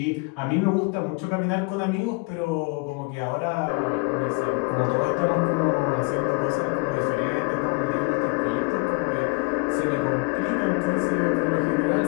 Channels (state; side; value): quieter; right; 29.8 dB